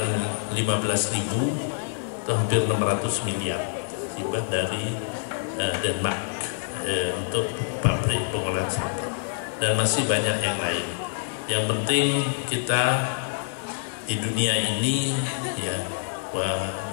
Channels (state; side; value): silent; right; digital silence